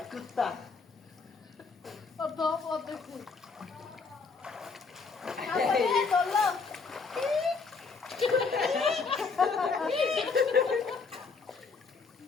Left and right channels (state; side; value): quieter; right; 4.7 dB